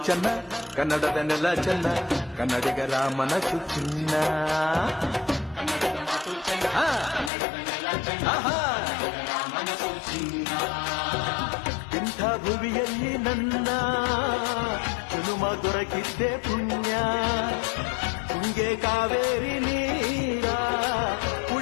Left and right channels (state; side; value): drops out; right; at 7.3 s